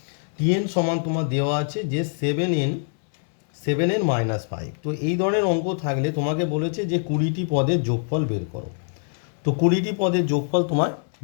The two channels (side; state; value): right; silent; 63 dB below the other